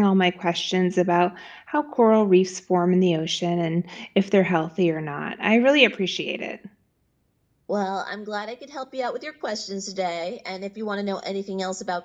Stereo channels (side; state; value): both; identical; correlation 1.00